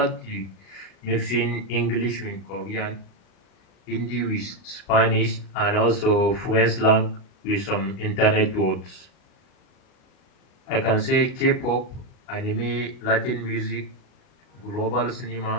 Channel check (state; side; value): late; right; 37 ms